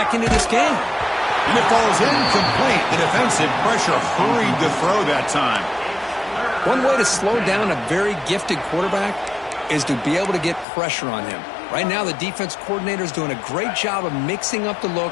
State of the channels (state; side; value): drops out; right; at 10.7 s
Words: into this game. And it falls incomplete. The defensive pressure hurried to throw that time. One way to slow down a very gifted quarterback is to be able to get pressure on him. Right now, the defense coordinator is doing a great job of mixing up the